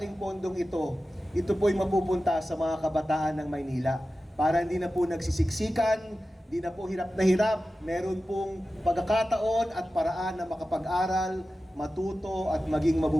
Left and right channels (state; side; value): normal; both; correlation 0.94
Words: pondong ito po'y mapupunta sa mga kabataan ng Maynila para hindi na po nagsisiksikan, hindi na po hirap na hirap, meron pong pagkakataon at paraan na makapag-aral, matuto at maging